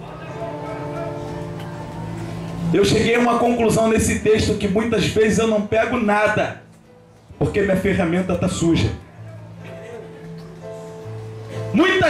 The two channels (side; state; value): both; identical; correlation 1.00